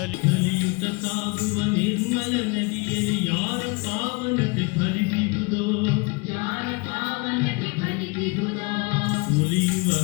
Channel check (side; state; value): right; quieter; 29.2 dB